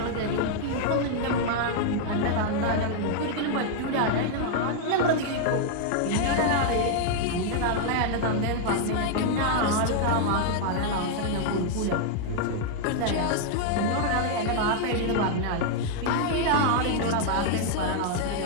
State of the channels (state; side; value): different; both; correlation 0.00